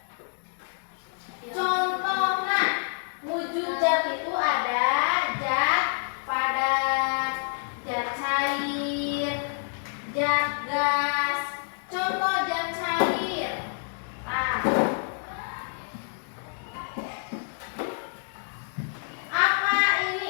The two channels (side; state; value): right; silent; digital silence